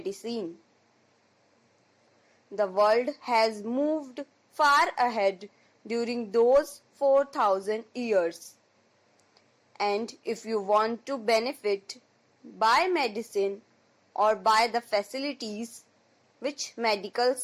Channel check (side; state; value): both; identical; correlation 1.00